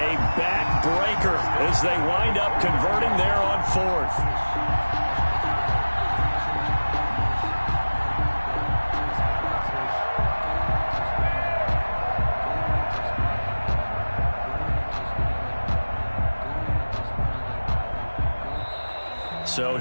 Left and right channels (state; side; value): inverted; both; correlation -1.00